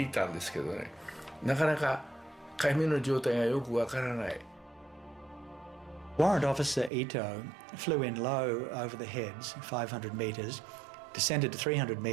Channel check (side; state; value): left; drops out; at 6.9 s